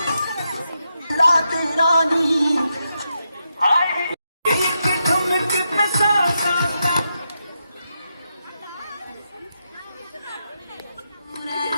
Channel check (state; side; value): inverted; both; correlation -0.85